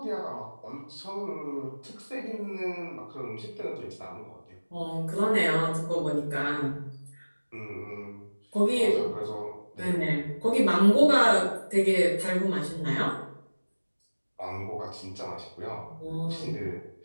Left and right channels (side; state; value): both; inverted; correlation -1.00